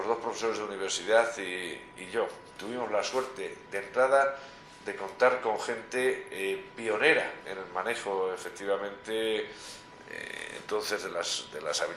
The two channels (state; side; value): identical; both; correlation 1.00